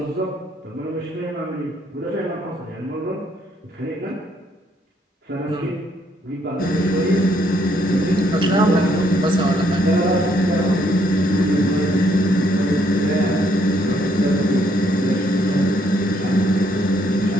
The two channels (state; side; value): normal; both; correlation 0.70